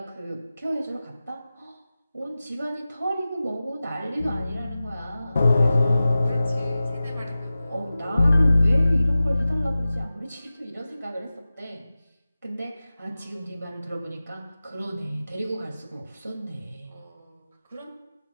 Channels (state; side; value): inverted; both; correlation -0.96